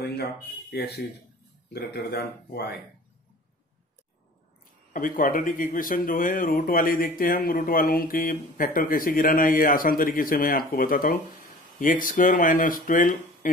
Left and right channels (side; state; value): both; normal; correlation 0.44